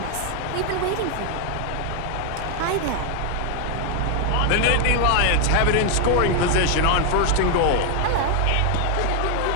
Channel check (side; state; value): both; different; correlation 0.00